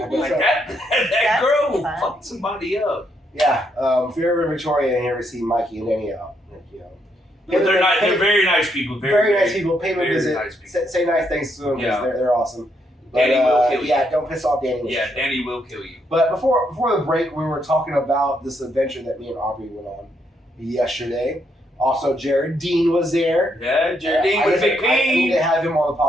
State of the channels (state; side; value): normal; both; correlation 0.76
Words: that girl will fuck somebody up. Yeah, if you're ever in Victoria and you ever see Mikey and Danny out, But they're very nice people. Very nice people. Pay them a visit. Nice say nice things to them because they're awesome. But, Danny will kill you. Yeah, don't piss off Danny. Yeah, Danny will kill you. But before the break, we were talking about this adventure that me and Aubrey went on yesterday. Also, Jared Dean was there. Yeah, Jared Dean with Big P. I need to have him on the